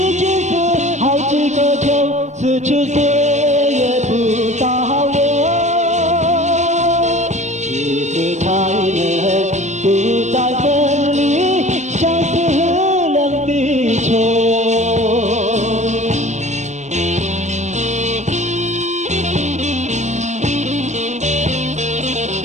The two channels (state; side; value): late; left; 0.34 ms